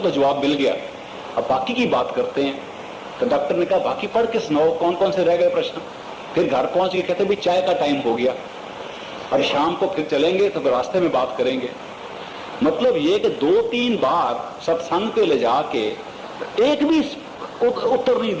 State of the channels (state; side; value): identical; both; correlation 1.00